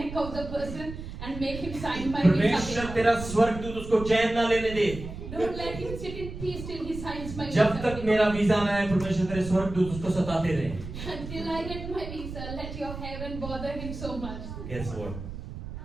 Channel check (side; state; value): right; noise; rumble, 10 dB below the sound